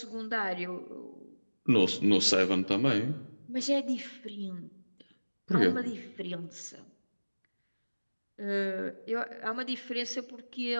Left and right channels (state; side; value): inverted; both; correlation -1.00